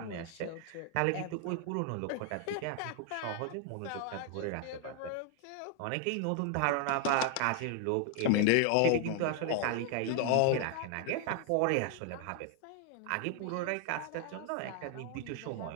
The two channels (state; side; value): different; both; correlation 0.00